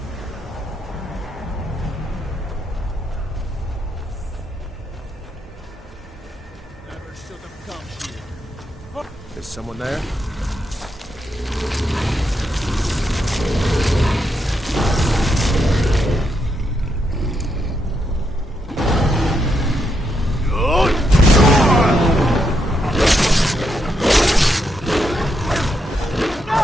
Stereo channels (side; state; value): both; normal; correlation 0.80